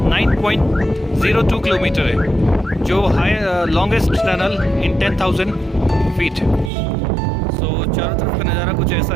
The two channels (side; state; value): left; drops out; at 6.7 s